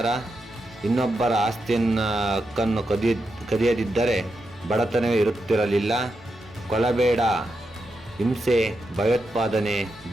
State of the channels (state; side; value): normal; both; correlation 0.86